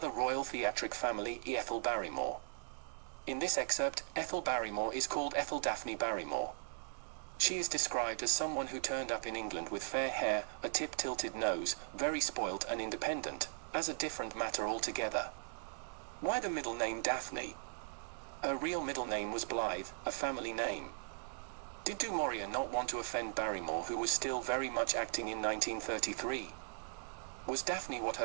royal theatric family, Ethel Barrymore. In this excerpt, Ethel Barrymore is called Ethel Daphne Barrymore. She is described as someone who turned up in England with fair hair, a tip-tilted nose, very spoilt and independent, as a different matter altogether. Why the middle name Daphne? Her real middle name was Blythe, a family name. Did du Maurier not want to offend Barrymore, who was still very much acting in 1933? Was Daphne what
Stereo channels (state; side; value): silent; left; digital silence